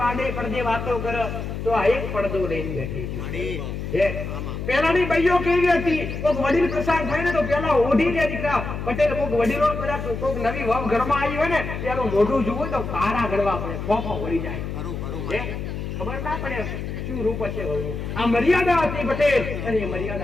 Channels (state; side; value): noise; left; hum, 5 dB below the sound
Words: પડદે વાતો કરે તો આ એક પડદો લઈને બેઠી છે. પેલાની ભાઈઓ કેવી હતી, કોઈક વડીલ પ્રસાદ થાય ને તો પેલા ઓઢી લે દીકરા. પટેલ કોઈક વડીલો કદાચ કોઈક નવી વહુ ઘરમાં આવી હોય ને પેલું મોઢું જોવું તો કારા ગળવા પડે, ફોફો વળી જાય. ખબર ના પડે શું રૂપ છે વહુનું. આ મર્યાદા હતી પટેલ, અને એ